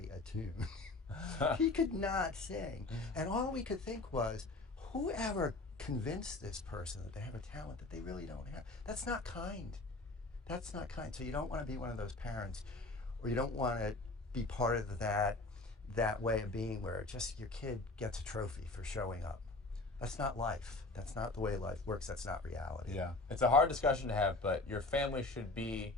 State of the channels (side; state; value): right; quieter; 3.1 dB